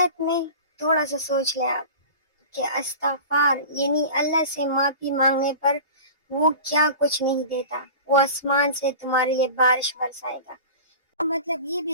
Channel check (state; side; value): inverted; both; correlation -0.36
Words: میں تھوڑا سا سوچ لیں آپ کہ استغفار یعنی اللہ سے معافی مانگنے پر وہ کیا کچھ نہیں دیتا، وہ آسمان سے تمہارے لیے بارش برسائے گا۔ مطلب یہ